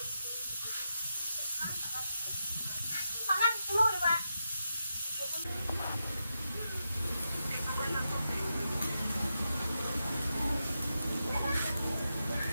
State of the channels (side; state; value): both; inverted; correlation -0.87